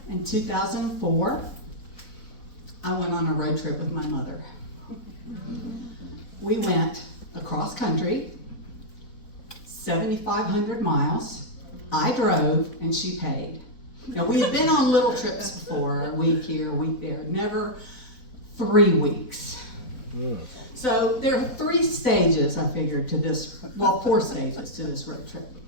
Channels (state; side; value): late; right; 4.1 ms